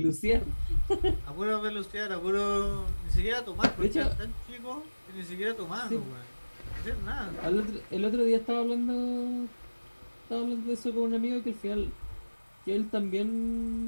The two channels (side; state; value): both; inverted; correlation -1.00